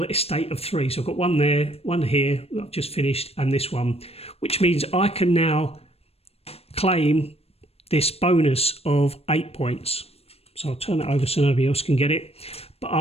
estate of 3. So I've got 1 there, 1 here, I've just finished, and this one, which means I can now claim this bonus of 8 points. So I'll turn that over so nobody else can get it. But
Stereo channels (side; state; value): right; late; 0.29 ms